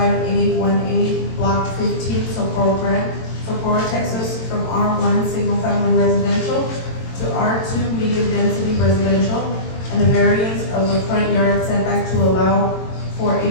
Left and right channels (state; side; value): late; right; 22 ms